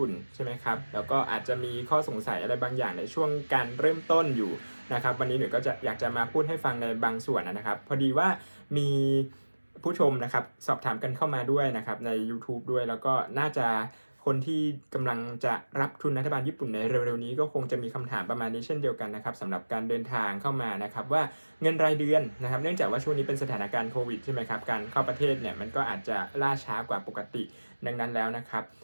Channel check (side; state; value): both; inverted; correlation -1.00